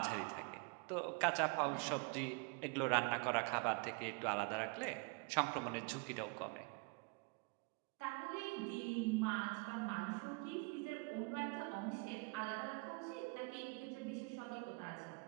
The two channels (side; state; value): left; quieter; 31.2 dB